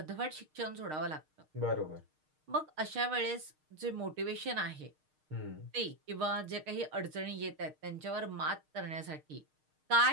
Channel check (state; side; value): late; left; 6.5 ms